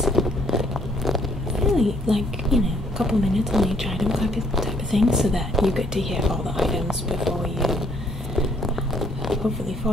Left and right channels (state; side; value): normal; both; correlation 0.66